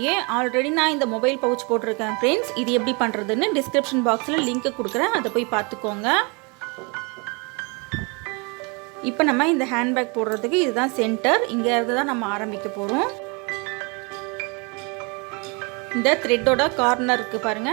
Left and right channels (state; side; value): quieter; left; 31.1 dB